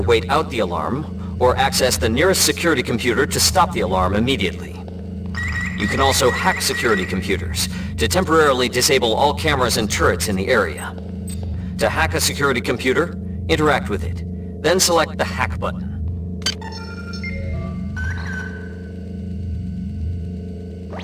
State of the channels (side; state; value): both; identical; correlation 1.00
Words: out the alarm, or access the nearest security computer to stop the alarm immediately. You can also hack security computers to temporarily disable all cameras and turrets in the area. To hack a security computer, interact with it, then select the hack button.